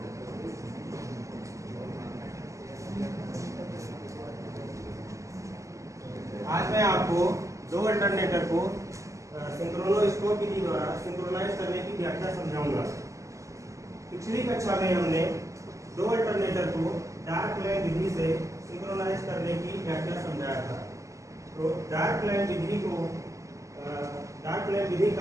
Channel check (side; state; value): left; late; 0.15 ms